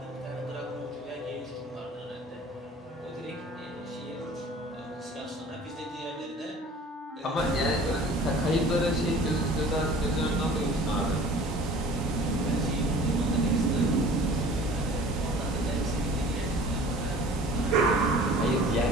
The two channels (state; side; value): normal; both; correlation 0.46